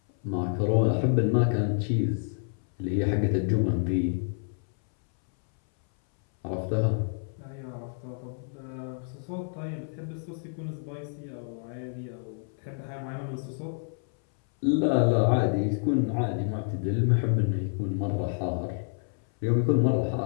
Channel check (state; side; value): silent; right; 59 dB below the other